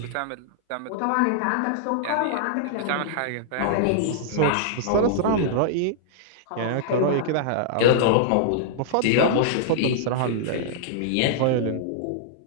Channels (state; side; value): different; both; correlation -0.01